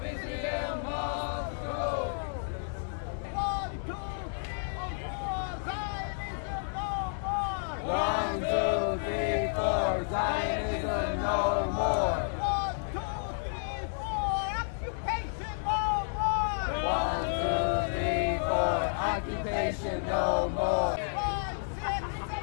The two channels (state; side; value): silent; right; digital silence